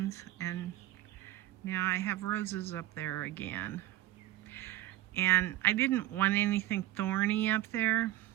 and now I have roses up there again. And I didn't want anything thorny up there,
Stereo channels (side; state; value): left; quieter; 15.4 dB